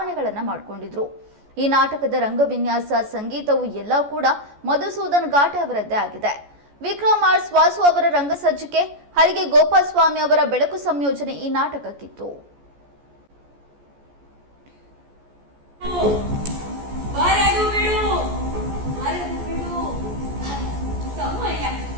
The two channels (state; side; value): late; left; 14 ms